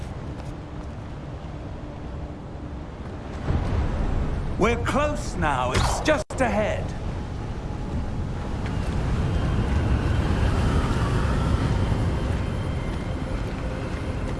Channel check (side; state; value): both; identical; correlation 1.00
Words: We're close now. It's just ahead.